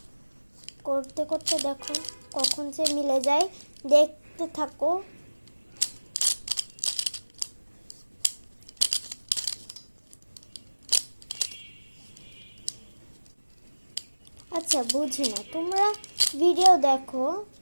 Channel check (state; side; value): inverted; both; correlation -1.00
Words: করতে করতে দেখো কখন যে মিলে যায়, দেখতে থাকো। আচ্ছা বুঝি না, তোমরা ভিডিও দেখো